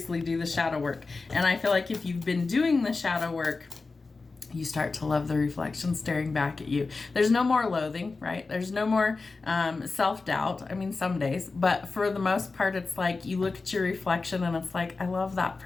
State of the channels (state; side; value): quieter; right; 3.9 dB